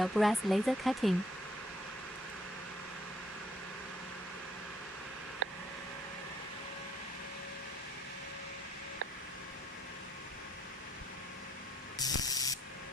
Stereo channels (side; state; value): both; normal; correlation 0.67